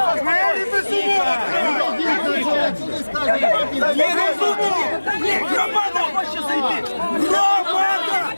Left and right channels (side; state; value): both; inverted; correlation -1.00